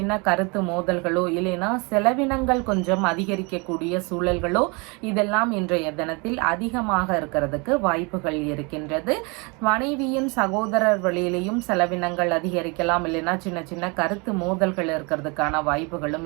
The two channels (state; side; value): quieter; left; 29.8 dB